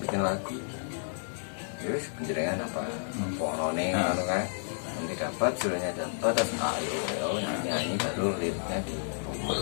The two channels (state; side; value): silent; right; 57 dB below the other